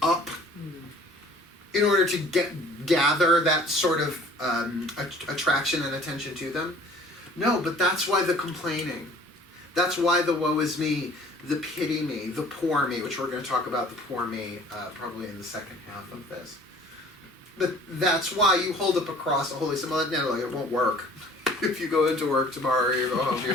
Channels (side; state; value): both; normal; correlation 0.51